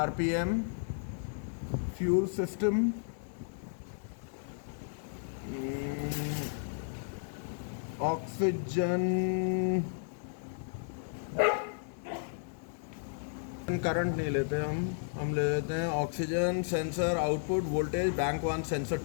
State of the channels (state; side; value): silent; right; digital silence